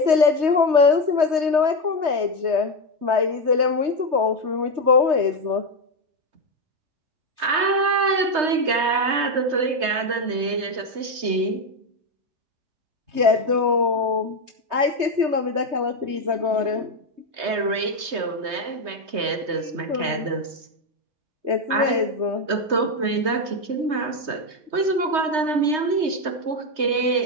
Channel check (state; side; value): late; left; 3.2 ms